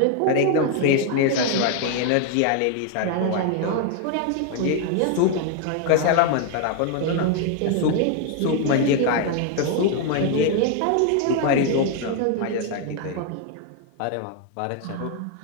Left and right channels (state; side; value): different; both; correlation 0.00